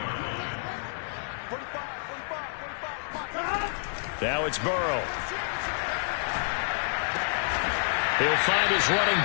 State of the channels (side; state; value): right; silent; digital silence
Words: Now it's Burrow. He'll find his running